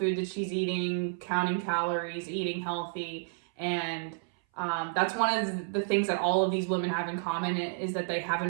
that she's eating, counting calories, eating healthy, and that's one of the things that all of these women have in common is that they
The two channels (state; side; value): silent; left; 57 dB below the other